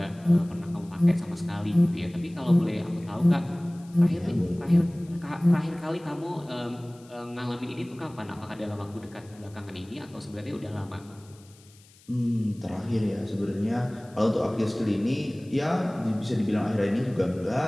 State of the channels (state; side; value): noise; left; hiss, 27 dB below the sound